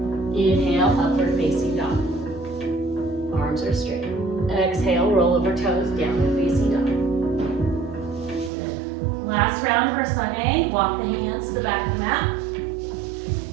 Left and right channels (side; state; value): left; drops out; at 8.5 s